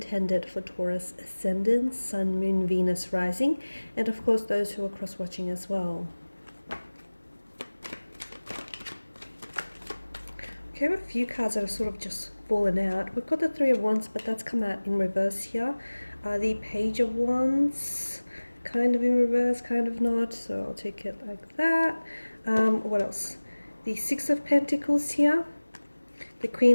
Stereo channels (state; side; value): inverted; both; correlation -1.00